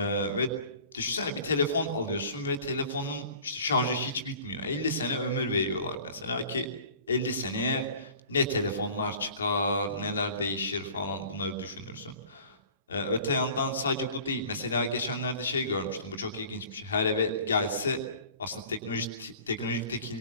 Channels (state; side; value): inverted; both; correlation -0.45